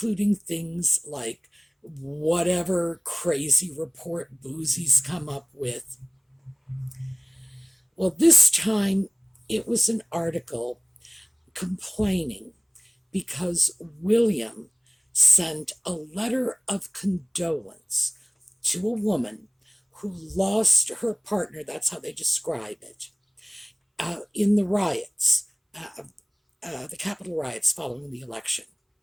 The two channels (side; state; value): both; identical; correlation 1.00